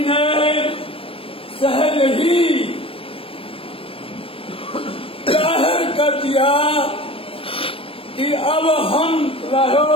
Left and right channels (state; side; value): late; right; 0.27 ms